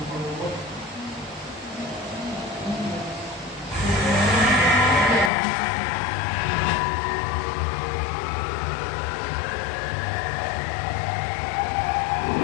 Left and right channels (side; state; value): right; drops out; at 5.3 s